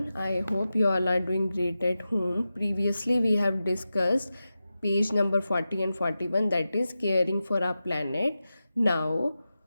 I hope you all are doing great at home. Previously, we have discussed page number 40 and 41, that is caring for our planet. Now,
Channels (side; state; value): both; inverted; correlation -0.92